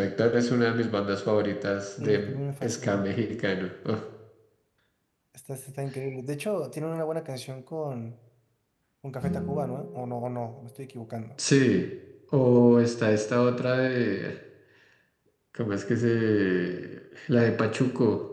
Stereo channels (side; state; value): both; identical; correlation 1.00